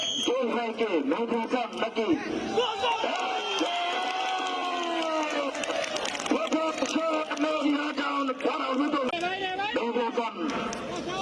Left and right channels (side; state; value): both; identical; correlation 1.00